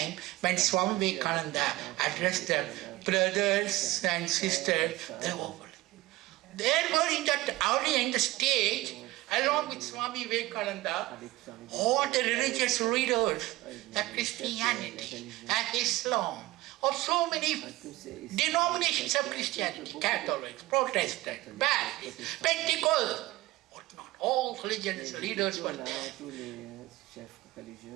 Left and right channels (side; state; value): left; quieter; 19.0 dB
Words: when Swami Vivekananda addressed the brothers and sisters, there were in that audience, the stage, along with Swami Vivekananda, all the religious leaders of Christianity and Islam, of so many denominations of Christianity, Catholics, Protestants, Baptists, Pentecostals, whatnot, all religious leaders were there.